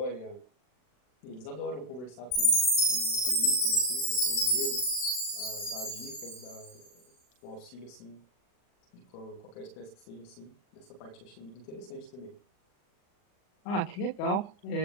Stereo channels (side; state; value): right; late; 40 ms